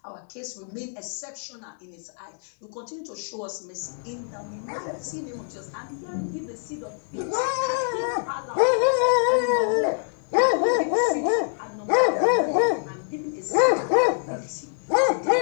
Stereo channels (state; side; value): silent; right; 59 dB below the other